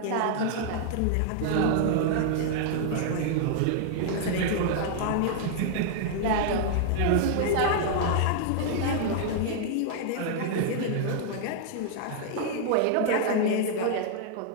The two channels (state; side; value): different; both; correlation -0.01